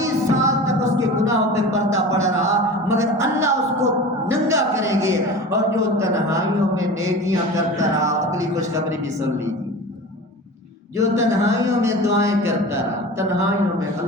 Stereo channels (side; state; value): both; normal; correlation 0.35